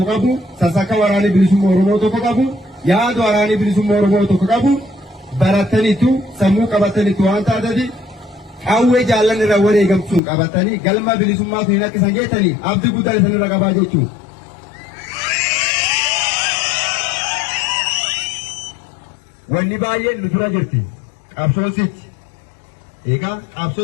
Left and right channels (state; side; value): drops out; right; at 10.2 s